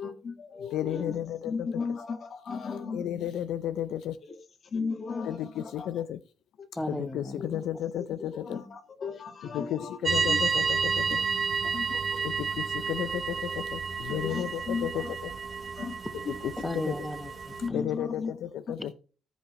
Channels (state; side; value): normal; both; correlation 0.71